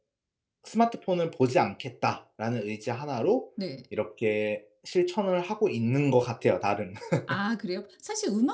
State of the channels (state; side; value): identical; both; correlation 1.00